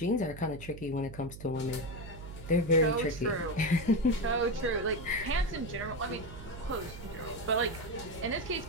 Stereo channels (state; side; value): noise; right; hum, 13 dB below the sound